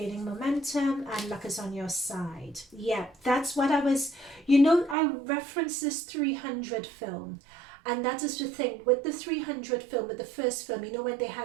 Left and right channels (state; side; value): drops out; left; at 5.0 s